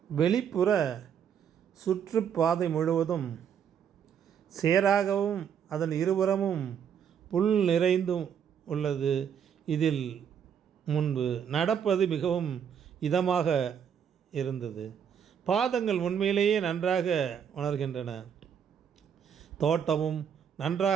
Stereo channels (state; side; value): quieter; left; 8.1 dB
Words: வெளிப்புற சுற்றுப்பாதை முழுவதும் சேராகவும் அதன் இருபுறமும் புல் நிறைந்தும் உள்ளது. இதில் முன்பு நடப்பது மிகவும் இதமாக இருந்தது. பாதங்கள் உண்மையிலேயே நன்றாக உணர்கின்றன. தோட்டமும்